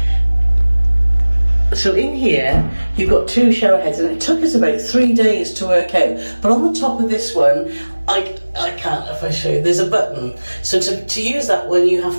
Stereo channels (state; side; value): inverted; both; correlation -1.00